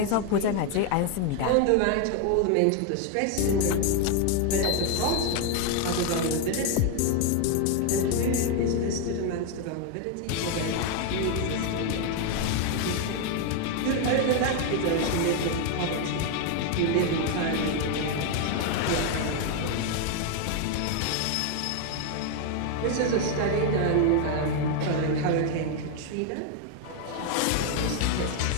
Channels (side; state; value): both; different; correlation 0.01